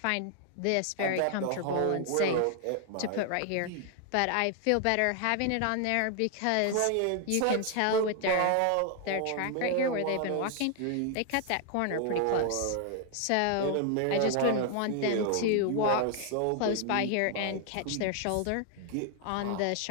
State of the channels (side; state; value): both; different; correlation 0.00